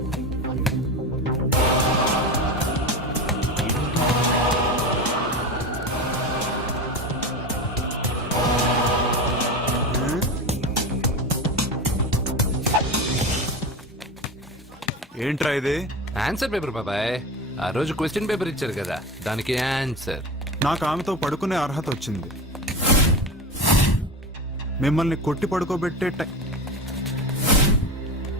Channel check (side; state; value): both; normal; correlation 0.25